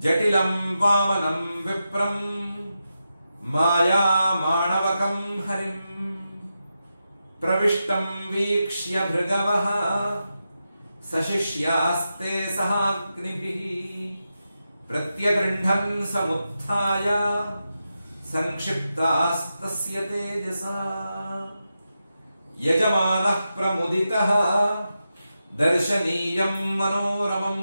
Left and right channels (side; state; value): both; inverted; correlation -0.89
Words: जटिलं वामनं विप्रं माया माणवकं हरिं प्रविष्टं वीक्ष्य भृगवः सशिष्यास्ते सहाग्निभिः प्रत्यगृह्णन् समुत्थाय संक्षिप्तास्तस्य तेजसा यजमानः प्रमुदितः दर्शनीयं